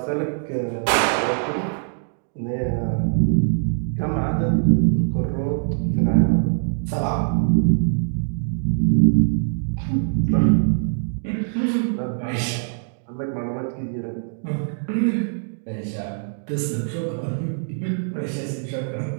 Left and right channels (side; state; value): left; silent; digital silence